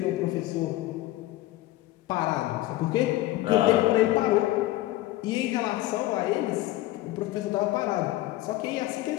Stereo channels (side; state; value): right; quieter; 16.4 dB